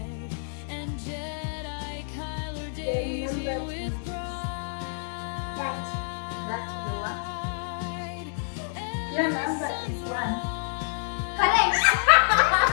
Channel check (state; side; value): silent; right; digital silence